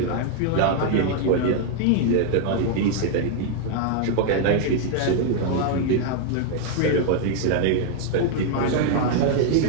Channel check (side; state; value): both; different; correlation 0.00